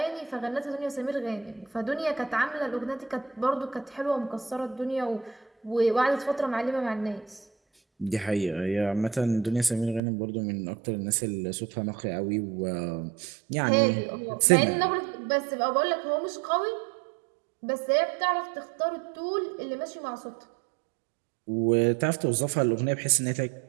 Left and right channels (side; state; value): left; drops out; at 10.0 s